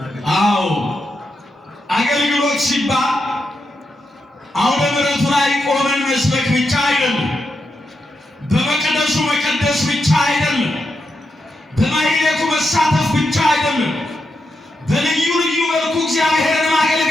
አዎ አገልግሎት ሲባል አውደ ምሕረቱ ላይ ቆመን መስበክ ብቻ አይደለም። በመቅደሱ መቀደስ ብቻ አይደለም። በማህሌቱ መሳተፍ ብቻ አይደለም። በልዩ ልዩ መልኩ እግዚአብሔርን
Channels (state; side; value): normal; both; correlation 0.85